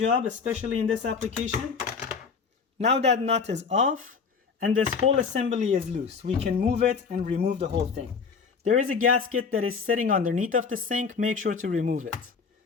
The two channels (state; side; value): quieter; right; 5.5 dB